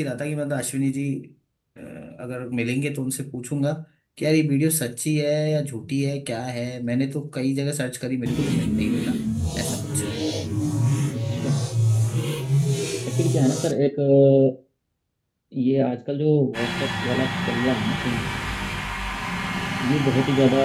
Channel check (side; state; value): both; identical; correlation 1.00